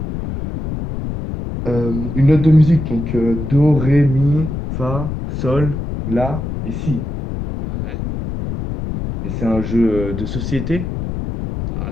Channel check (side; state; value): left; noise; rumble, 5 dB below the sound